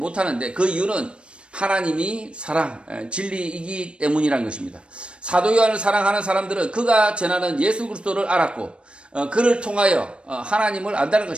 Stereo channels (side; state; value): left; late; 0.058 ms